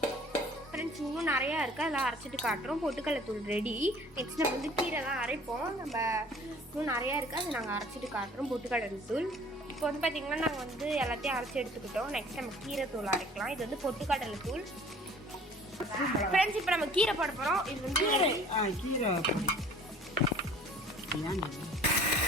ஃப்ரெண்ட்ஸ் இன்னும் நிறையா இருக்குது, அதெல்லாம் அரைச்சிட்டு காட்டுறோம். பொட்டுக்கடலை தூள் ரெடி. நெக்ஸ்ட் நம்ம வந்து கீரைலாம் அரைப்போம். நம்ம இன்னும் நிறையா இருக்குது, அதை நாங்கள் அரைச்சிட்டு காட்டுறோம். பொட்டுக்கடலை தூள் இப்போ வந்து பார்த்திங்கன்னா நாங்கள் வந்து எல்லாத்தையும் அரைச்சி எடுத்துக்கிட்டோம். நெக்ஸ்ட் நம்ம கீரை தூள் அரைக்கலாம். இது வந்து பொட்டுக்கடலை தூள். ஃப்ரெண்ட்ஸ் இப்போ நம்ம கீரை போட போகிறோம். இது வந்து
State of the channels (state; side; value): normal; both; correlation 0.50